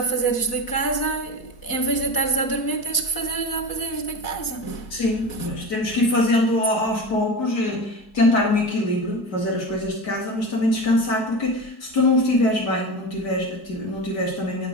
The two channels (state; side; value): late; right; 4.6 ms